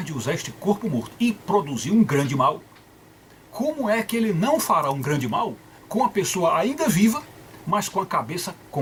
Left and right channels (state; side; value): identical; both; correlation 1.00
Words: de usar este corpo morto e produzir um grande mal, como é que ele não fará um grande mal com a pessoa ainda viva, mas com a cabeça